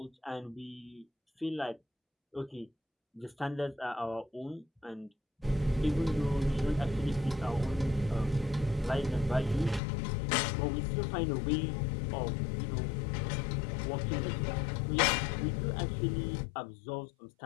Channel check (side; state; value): right; drops out; at 9.8 s